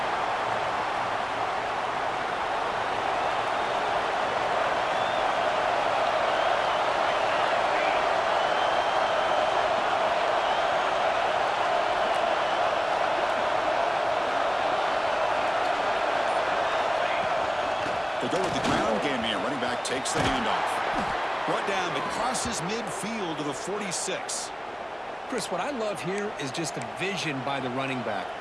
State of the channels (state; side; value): identical; both; correlation 1.00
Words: They go with the ground game here. Running back takes the handoff. Brought down, but crosses midfield to the 46. Chris, what I love here is just the vision by the running back.